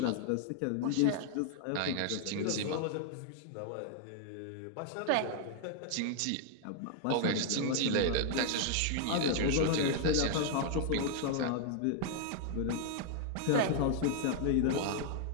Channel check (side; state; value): both; different; correlation 0.00